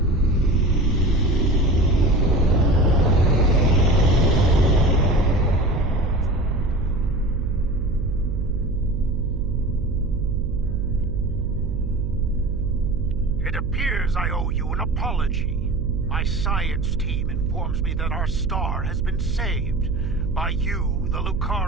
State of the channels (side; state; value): right; noise; hum, 3 dB below the sound